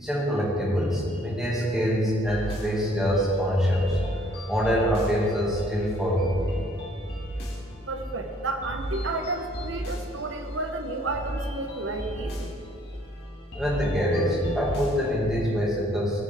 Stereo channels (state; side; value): normal; both; correlation 0.62